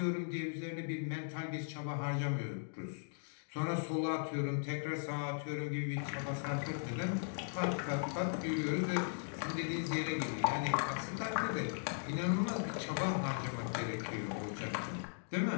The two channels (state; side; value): silent; right; digital silence